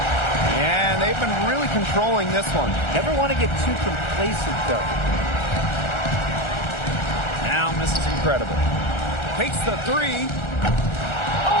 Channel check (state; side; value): late; right; 1.4 ms